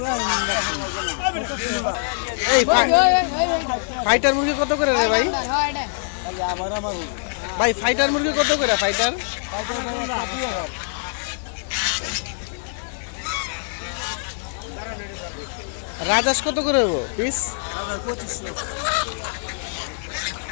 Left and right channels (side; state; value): right; silent; digital silence